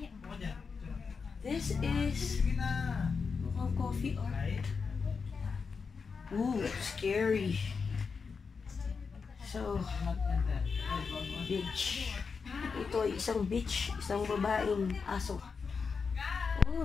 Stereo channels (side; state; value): right; quieter; 5.3 dB